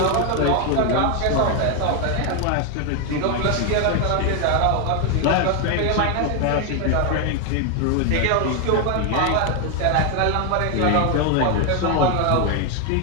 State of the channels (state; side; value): different; both; correlation 0.01